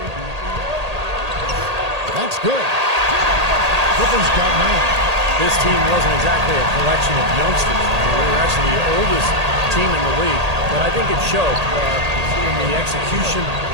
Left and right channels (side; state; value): left; late; 1.8 ms